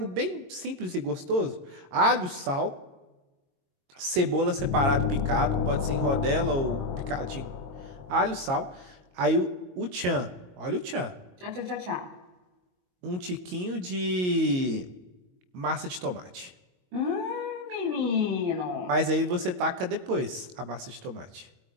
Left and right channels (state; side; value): late; left; 22 ms